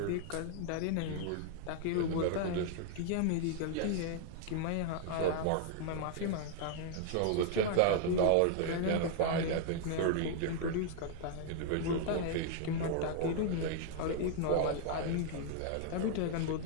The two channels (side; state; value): both; different; correlation 0.00